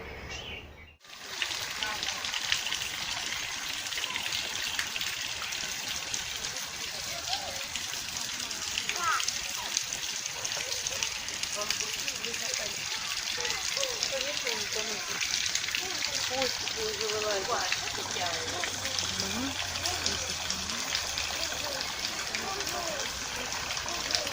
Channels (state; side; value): identical; both; correlation 1.00